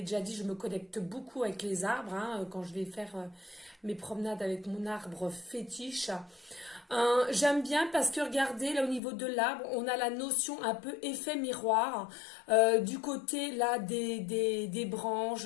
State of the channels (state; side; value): drops out; right; at 9.0 s